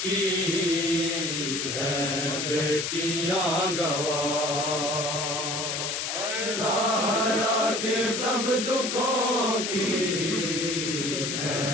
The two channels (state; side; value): noise; left; hiss, 2 dB below the sound